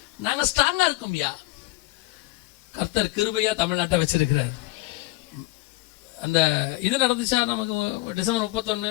நாங்க ஸ்ட்ராங்கா இருக்கோம்யா. கர்த்தர் கிருபையா தமிழ்நாட்டை வச்சிருக்கிறார். அந்த இது நடந்துச்சா நமக்கு டிசம்பர் 31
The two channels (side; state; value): right; quieter; 20.0 dB